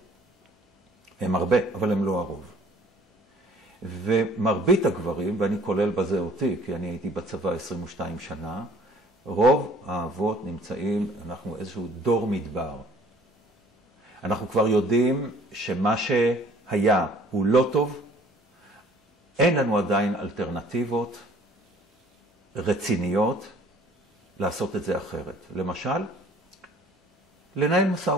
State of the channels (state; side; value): normal; both; correlation 0.54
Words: הם הרבה, אבל הם לא הרוב. ומרבית הגברים, ואני כולל בזה אותי, כי אני הייתי בצבא 22 שנה, רוב האבות נמצאים, אנחנו איזשהו דור מדבר. אנחנו כבר יודעים שמה שהיה הוא לא טוב, אין לנו עדיין אלטרנטיבות רציניות לעשות את זה אחרת. למשל, לנהל משא